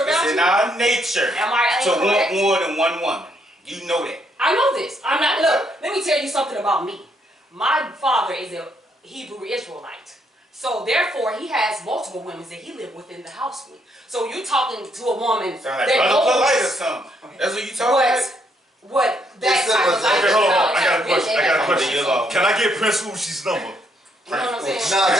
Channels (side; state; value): both; normal; correlation 0.73